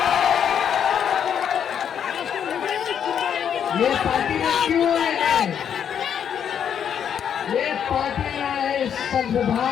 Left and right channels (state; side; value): quieter; right; 8.4 dB